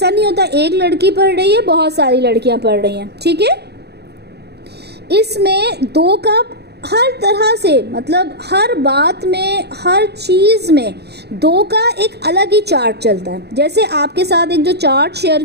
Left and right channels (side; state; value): left; late; 0.48 ms